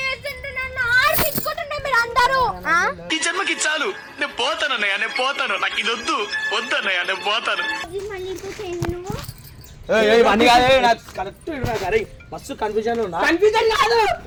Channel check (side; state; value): both; identical; correlation 1.00